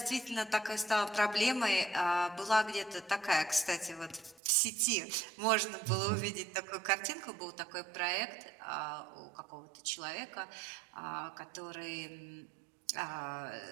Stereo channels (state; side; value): drops out; left; at 4.4 s